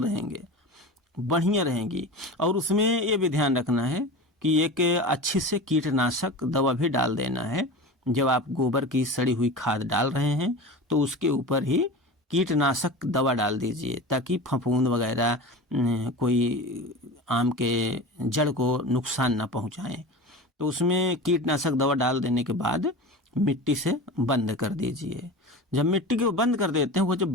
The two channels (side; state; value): both; normal; correlation 0.31